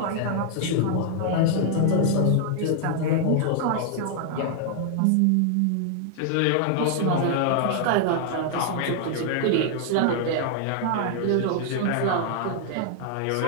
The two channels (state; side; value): different; both; correlation 0.00